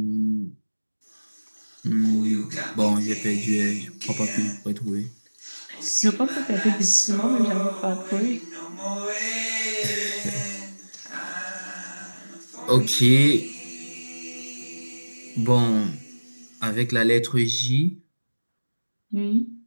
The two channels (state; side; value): inverted; both; correlation -1.00